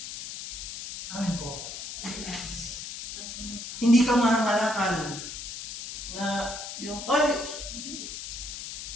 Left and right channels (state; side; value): noise; left; hiss, 8 dB below the sound